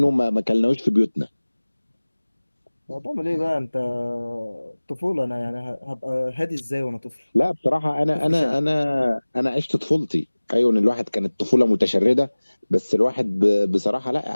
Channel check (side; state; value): both; inverted; correlation -1.00